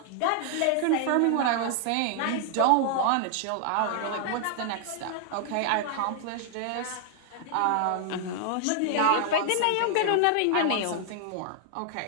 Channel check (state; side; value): different; both; correlation 0.00